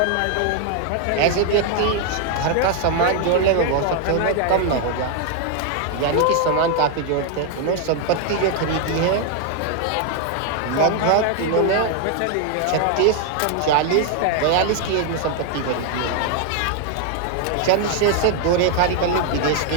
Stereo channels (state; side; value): different; both; correlation 0.00